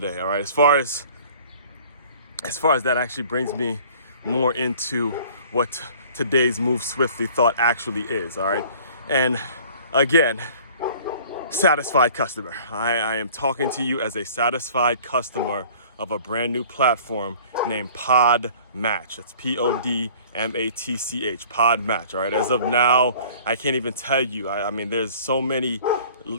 All right. As far as that actually brings me more into what today's Move Swiftly thought actually is. All right. And again, satisfied customer. I am talking to you as a satisfied customer of a brand new platform named Podmatch. It's Podmatch, Podmatch. All right. As of now, I can't even tell you. I mean, there's so many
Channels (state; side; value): inverted; both; correlation -0.49